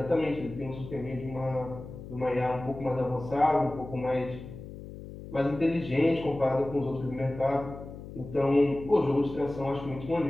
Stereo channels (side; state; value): left; noise; hum, 13 dB below the sound